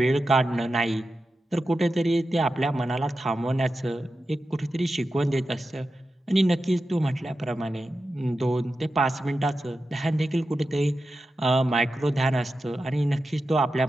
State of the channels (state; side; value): normal; both; correlation 0.91